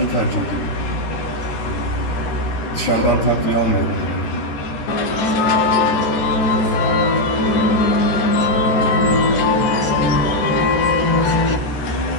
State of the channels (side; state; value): right; late; 13 ms